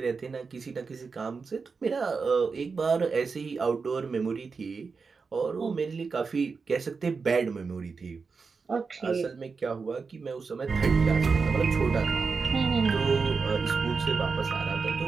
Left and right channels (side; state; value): left; quieter; 4.9 dB